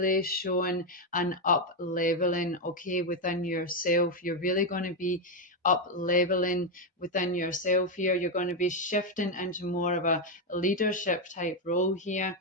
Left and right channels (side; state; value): both; normal; correlation 0.05